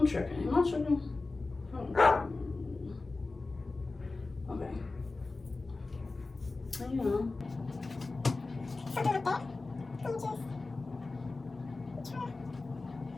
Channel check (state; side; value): quieter; right; 3.5 dB